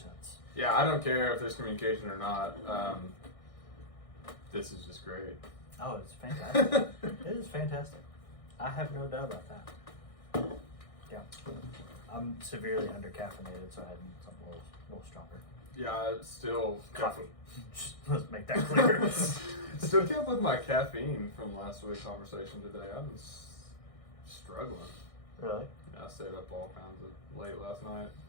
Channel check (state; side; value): late; right; 1.6 ms